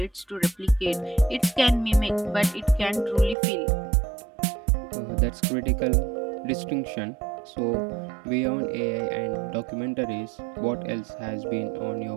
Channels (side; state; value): left; drops out; at 3.4 s